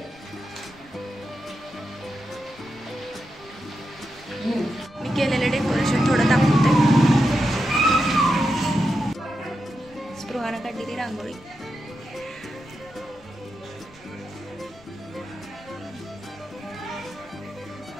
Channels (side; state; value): left; noise; rumble, 25 dB below the sound